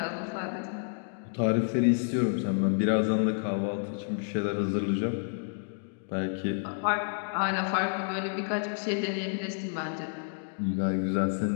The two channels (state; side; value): silent; right; digital silence